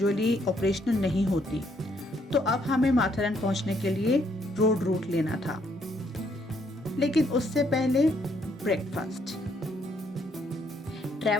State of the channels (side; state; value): both; normal; correlation 0.70